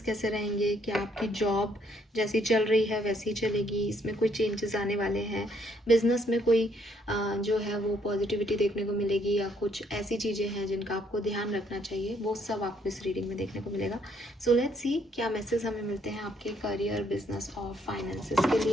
कैसे रहेंगे, क्या आपकी जॉब जैसी चल रही है वैसी चलेगी, इसमें कोई चेंजेस आने वाले हैं, बिजनेस में कोई जो है वो पॉजिटिविटी देखने को मिलेगी, या कुछ ऐसी चीज़ें हैं जिनका आपको ध्यान रखना चाहिए, वो सब आपको इस रीडिंग में देखने को मिलेगा। सो लेट्स सी क्या मैसेज हमें मिलते हैं आपके करियर, बिजनेस और फाइनेंसेस के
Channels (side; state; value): both; normal; correlation 0.69